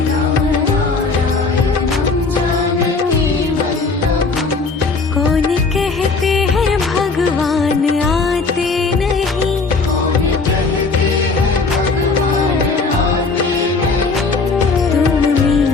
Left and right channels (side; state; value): right; quieter; 4.2 dB